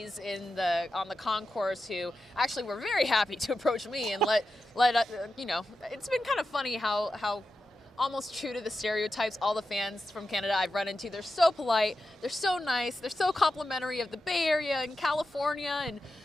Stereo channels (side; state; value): both; normal; correlation 0.90